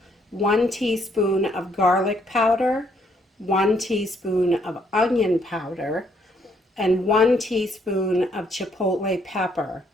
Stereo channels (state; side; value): normal; both; correlation 0.70